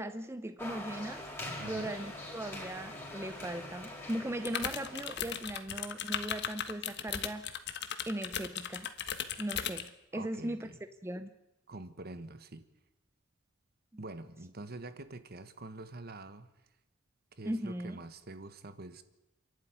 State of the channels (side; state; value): both; normal; correlation 0.52